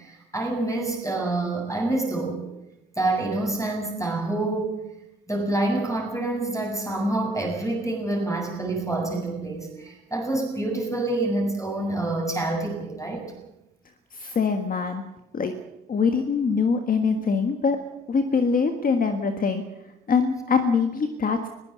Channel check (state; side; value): normal; both; correlation 0.60